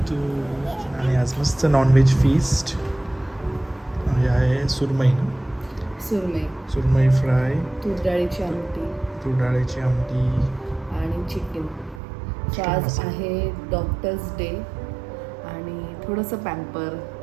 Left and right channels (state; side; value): drops out; left; at 12.0 s